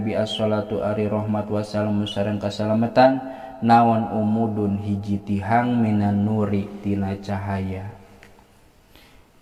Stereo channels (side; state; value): both; identical; correlation 1.00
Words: as-salatu ari rahmat wassalam sareng kasalamatan naon umudun hiji tihang minan nuri tina cahaya